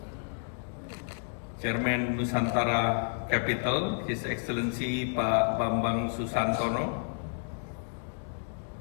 Chairman Nusantara Capital, His Excellency Pak Bambang Susantono,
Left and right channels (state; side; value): silent; right; digital silence